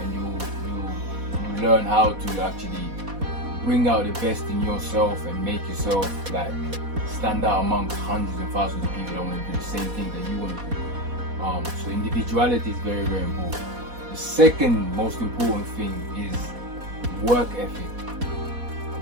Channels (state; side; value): late; left; 4.1 ms